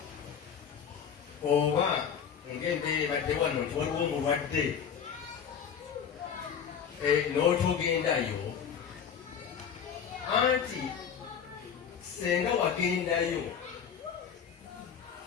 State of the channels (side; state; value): right; quieter; 7.6 dB